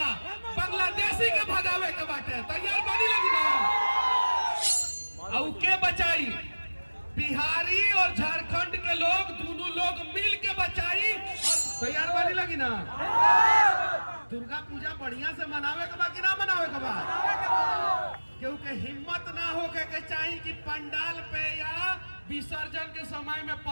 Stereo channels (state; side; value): inverted; both; correlation -1.00